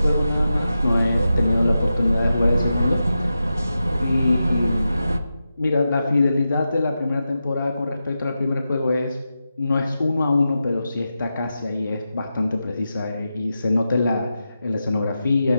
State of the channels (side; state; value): both; inverted; correlation -0.90